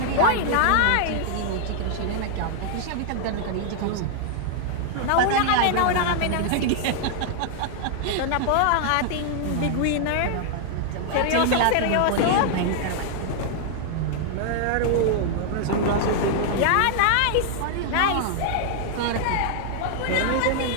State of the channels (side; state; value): both; different; correlation -0.01